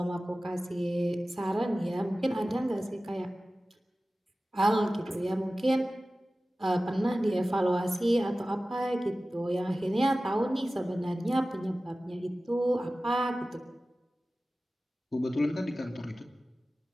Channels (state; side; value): normal; both; correlation 0.96